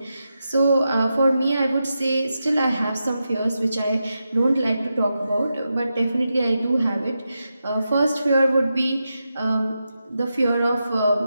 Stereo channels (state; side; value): inverted; both; correlation -0.88